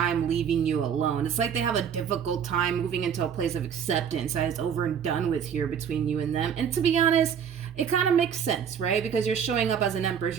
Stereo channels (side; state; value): left; quieter; 7.9 dB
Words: leaving you alone. It's like they have a difficult time moving into a place of acceptance that is over and done with here between you and them. And to be honest, it kind of makes sense, right? Because you're showing up as an empress.